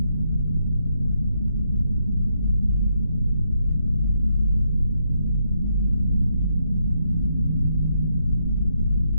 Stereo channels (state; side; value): inverted; both; correlation -0.79